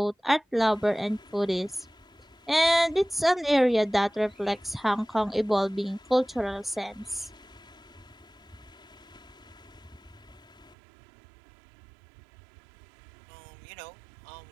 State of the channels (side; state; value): left; drops out; at 10.8 s